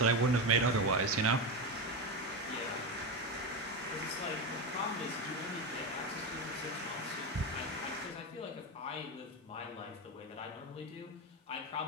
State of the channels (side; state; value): both; normal; correlation 0.15